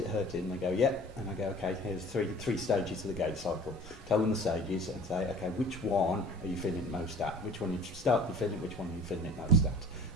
hurting? And they go, yeah. And I go, okay, here's three stages of the gait cycle. Tell them the stages and say, okay, which one are you feeling it most at? Which one you start to feeling, which one are you feeling it most at?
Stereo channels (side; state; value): both; normal; correlation 0.45